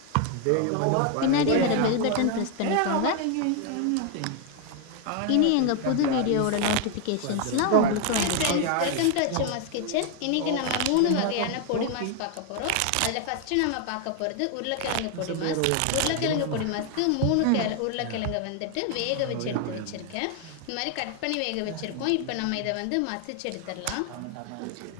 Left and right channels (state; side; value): different; both; correlation 0.00